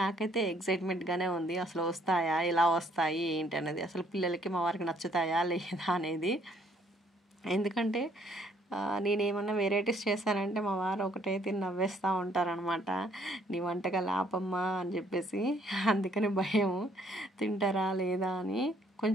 ఎక్సైట్మెంట్గానే ఉంది, అసలు వస్తాయా, ఎలా వస్తాయి ఏంటి అనేది, అసలు పిల్లలకి మా వారికి నచ్చుతాయా లేదా అనేది. ఎందుకంటే నేనేమన్నా వెరైటీస్ చేశానంటే మా వారు ఒకటే తిని నవ్వేస్తూ ఉంటారనమాట, నీ వంటకాలు ఆపమ్మా అని చెప్పేసి. అందుకని భయం తింటారా లేదా అని.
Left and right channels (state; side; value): normal; both; correlation 0.65